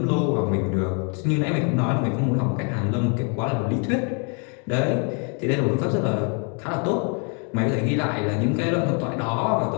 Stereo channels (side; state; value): right; quieter; 38.1 dB